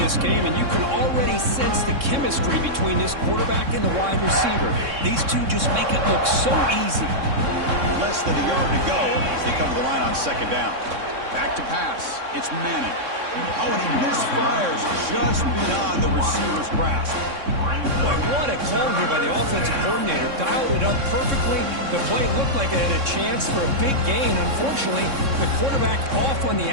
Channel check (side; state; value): left; late; 3.6 ms